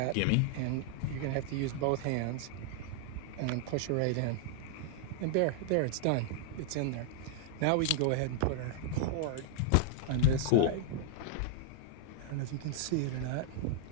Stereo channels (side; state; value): both; different; correlation 0.00